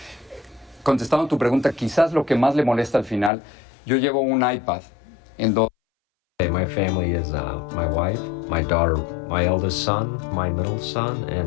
Contestando tu pregunta, quizás lo que más le molesta al final, yo llevo un iPad en donde... My family is my wife, my daughter, my eldest son, my middle son,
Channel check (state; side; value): drops out; right; at 3.3 s